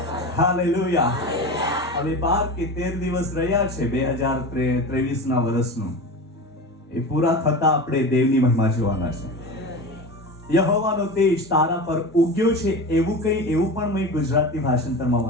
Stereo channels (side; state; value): both; normal; correlation 0.28